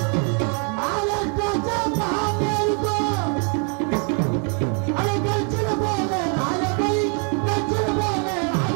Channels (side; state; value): left; quieter; 39.5 dB